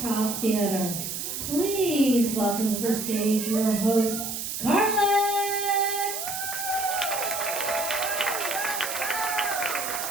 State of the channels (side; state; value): right; noise; hiss, 5 dB below the sound